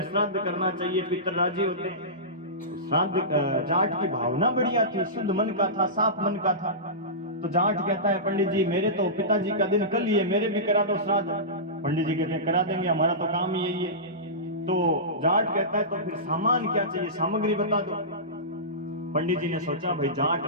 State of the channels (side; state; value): both; normal; correlation -0.19